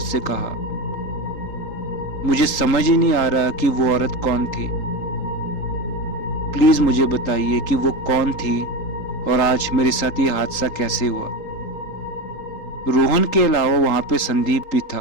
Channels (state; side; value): late; right; 3.8 ms